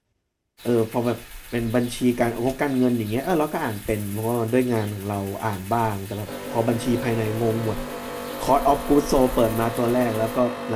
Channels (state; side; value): identical; both; correlation 1.00